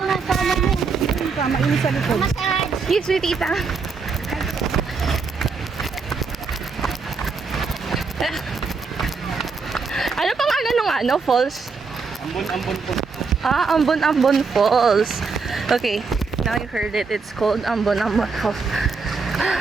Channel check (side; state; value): left; quieter; 4.8 dB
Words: sa ano mo. Mainit sa likod. Yes, sweet tita. Ano pang ano falls? Ambon po. Ambon Falls. Okay, now you heard it. It's called Ambon Falls.